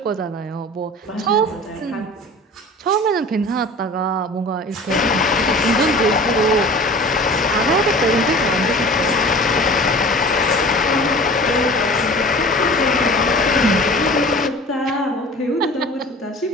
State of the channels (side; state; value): both; normal; correlation 0.41